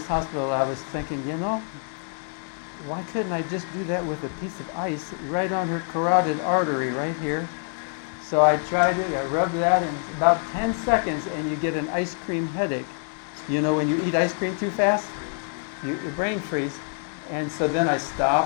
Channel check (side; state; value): right; silent; 61 dB below the other